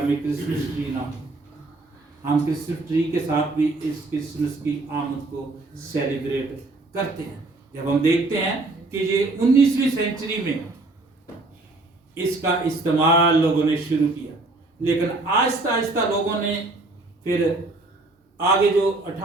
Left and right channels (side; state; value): left; quieter; 3.1 dB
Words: में क्रिसमस ट्री ना हो। हम क्रिसमस ट्री के साथ भी इस क्रिसमस की आमद को सेलिब्रेट करते हैं। जब हम देखते हैं कि ये 19वीं सेंचुरी में इसका इस्तेमाल लोगों ने शुरू किया, लेकिन आहिस्ता आहिस्ता लोगों ने फिर आगे जो